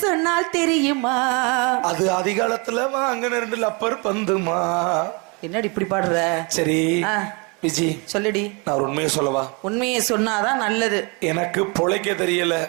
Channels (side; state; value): left; quieter; 31.3 dB